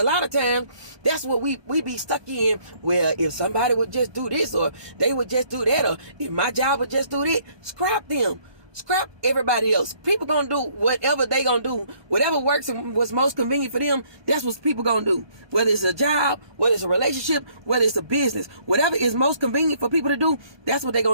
lot of times that's what we be stuck in. Well, if somebody would just do this, or they would just do that, or if my job would just do that, scrap them. Scrap everybody else. People gonna do whatever they gonna do. Whatever works and what's most convenient for them, that's what people gonna do. Whether it's a job, whether it's a relationship, whether it's a business, whatever is most convenient for people to do, that's what they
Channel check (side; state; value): left; late; 1.2 ms